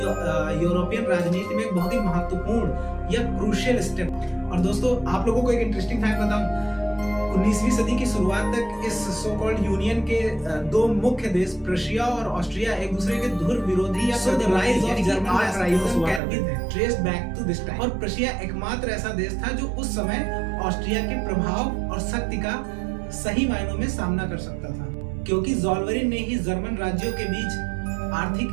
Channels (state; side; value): drops out; left; at 16.2 s